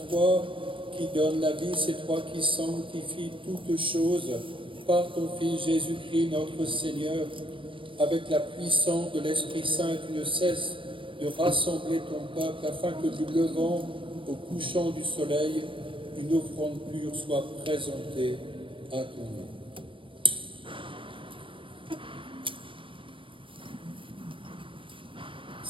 toi qui donnes la vie, c'est toi qui sanctifies toutes choses par ton Fils Jésus-Christ notre Seigneur. Avec la puissance de l'Esprit Saint, tu ne cesses de rassembler ton peuple afin que du levant au couchant du soleil, une offrande pure soit présentée à ton nom.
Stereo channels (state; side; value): late; left; 0.25 ms